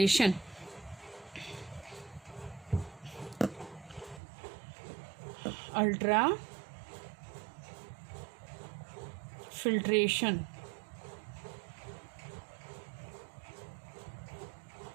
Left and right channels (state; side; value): drops out; left; at 4.2 s